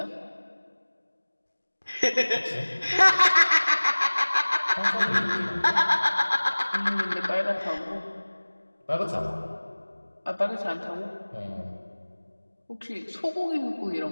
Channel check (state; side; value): inverted; both; correlation -1.00